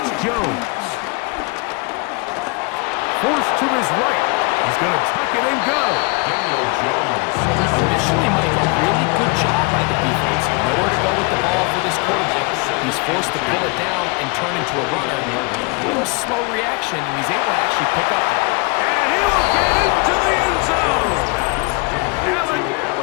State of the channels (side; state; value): right; quieter; 29.5 dB